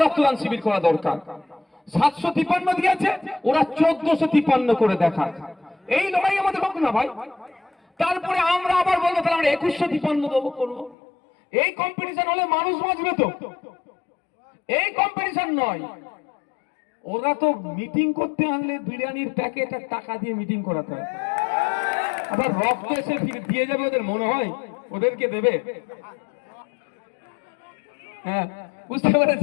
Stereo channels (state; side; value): drops out; right; at 11.0 s